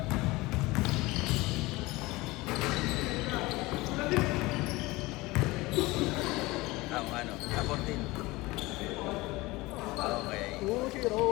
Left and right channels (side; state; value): right; quieter; 21.3 dB